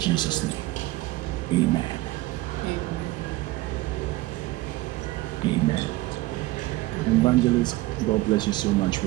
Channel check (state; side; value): quieter; left; 18.4 dB